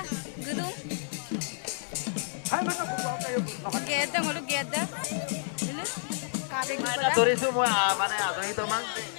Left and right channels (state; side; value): silent; right; digital silence